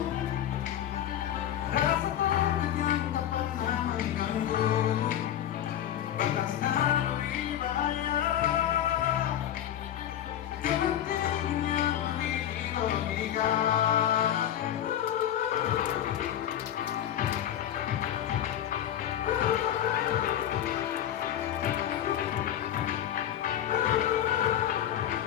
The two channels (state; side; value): quieter; right; 10.9 dB